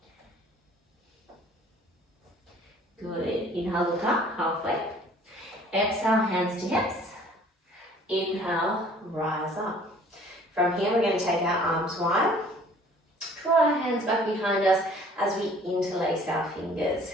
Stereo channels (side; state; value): both; normal; correlation 0.53